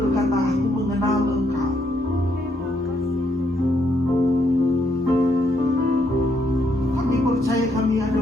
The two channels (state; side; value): normal; both; correlation 0.74